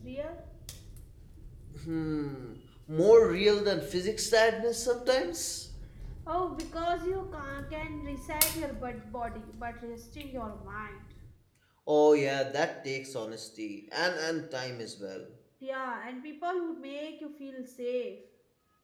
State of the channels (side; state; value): both; identical; correlation 1.00